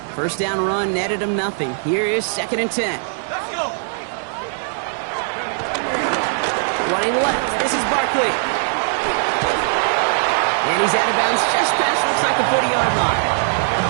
First down run netted him nothing. Here is 2nd and 10. Running left. This is Barkley. And he's out of bounds just past, looks like the 40-yard line.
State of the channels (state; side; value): silent; left; digital silence